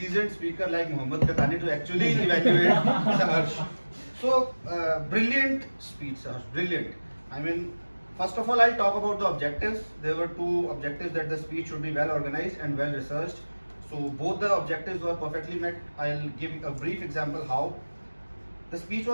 speaker like Mohammad Katani to actually evaluate Saharsh. So brilliant speech, Saharsh, brilliant. I mean, first of all, I'll talk about the objectives. There were two objectives, that the speech should be well organized and well researched. So both the objectives were perfectly met. I'll give a brief example how. The speech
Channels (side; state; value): both; inverted; correlation -1.00